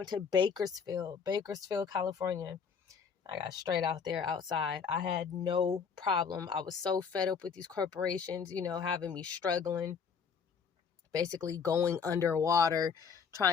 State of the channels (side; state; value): right; quieter; 6.2 dB